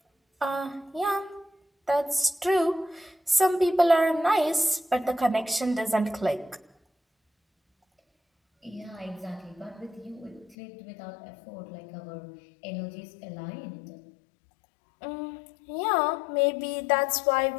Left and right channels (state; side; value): drops out; right; at 10.6 s